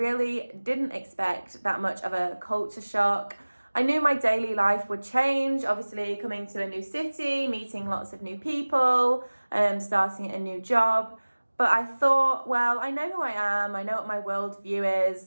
didn't expect that much of a culture shock. I knew my daily life would change, obviously coming to a new city, meeting lots of new people, starting a new job. But I thought, well, I know who I am, I know what my worldview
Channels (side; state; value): both; inverted; correlation -1.00